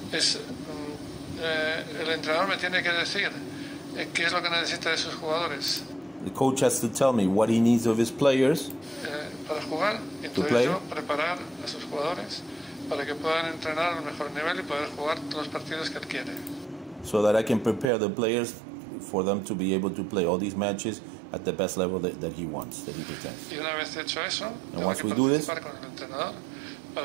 El entrenador me tiene que decir qué es lo que necesita de sus jugadores. The coach has to tell me what he needs of his players para jugar, y entonces yo preparar a sus jugadores para que puedan entrenar al mejor nivel y poder jugar todos los partidos que él quiere. So that I can prepare the players for them to be able to play all these matches at the best level that he wants, that he pretends. Y una vez hecho eso, and once we do this, con el entrenador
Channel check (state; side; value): drops out; left; at 17.9 s